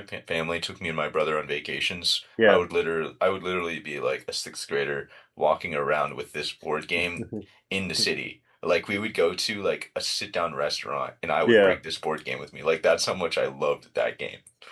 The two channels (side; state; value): both; identical; correlation 1.00